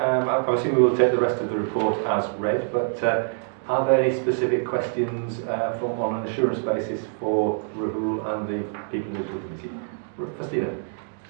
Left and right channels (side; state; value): left; silent; 62 dB below the other